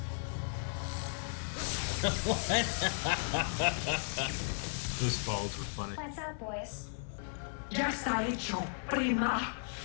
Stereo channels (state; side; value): silent; right; digital silence